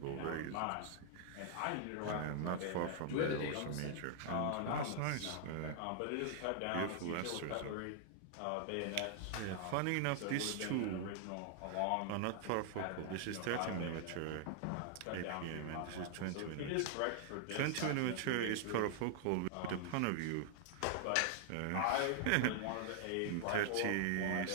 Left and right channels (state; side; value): different; both; correlation 0.00